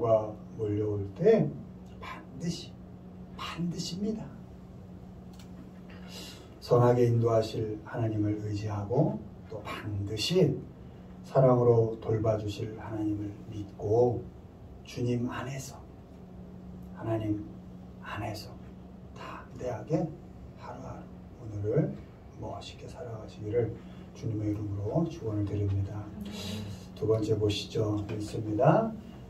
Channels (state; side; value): identical; both; correlation 1.00